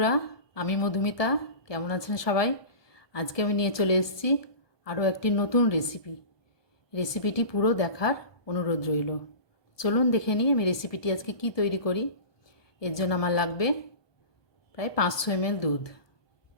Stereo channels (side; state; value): right; late; 1.2 ms